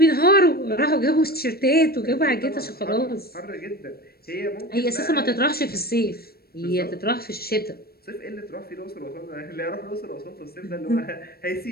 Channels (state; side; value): late; right; 0.45 ms